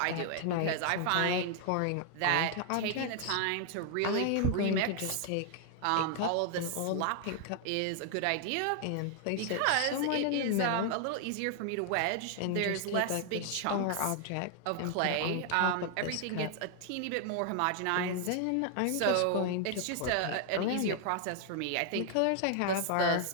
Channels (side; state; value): both; different; correlation 0.00